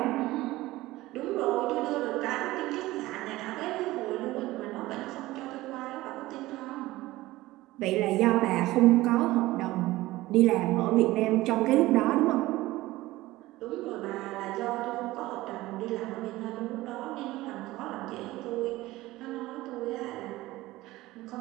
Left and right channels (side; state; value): left; quieter; 18.0 dB